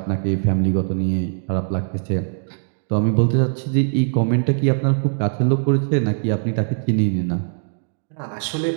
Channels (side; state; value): left; silent; 65 dB below the other